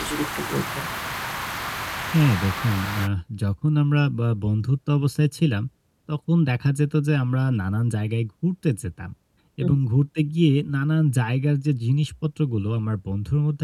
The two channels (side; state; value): both; identical; correlation 1.00